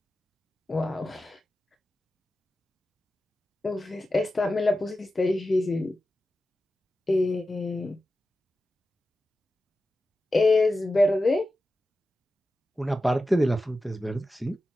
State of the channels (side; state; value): both; normal; correlation 0.93